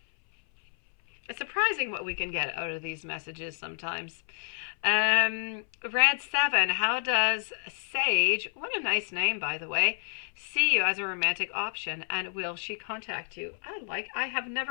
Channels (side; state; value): right; silent; 58 dB below the other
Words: It's surprising what we can get out of these messages sometimes. Red 7, how does Sage, what a nice name by the way, see you as a romantic option, and will she contact you? I have